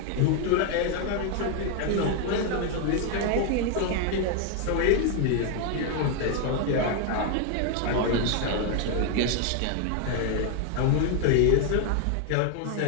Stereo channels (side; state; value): both; different; correlation 0.01